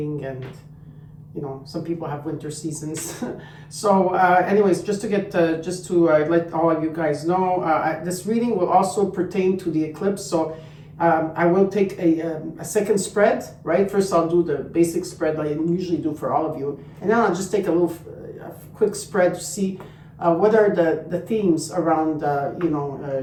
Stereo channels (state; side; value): identical; both; correlation 1.00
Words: and some people have winter seasons. So anyways, just to let all of you guys know, this reading will also pertain to the eclipse. So I will take a second spread, right? First I'll do the basic spread like I usually do for all of you, and then I'll just take a quick spread to see what are the themes around